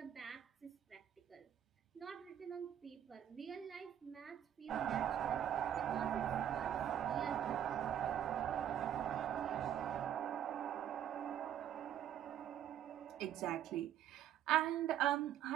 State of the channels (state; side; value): quieter; left; 10.3 dB